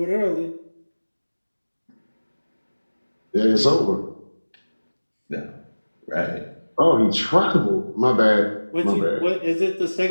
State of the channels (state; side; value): inverted; both; correlation -1.00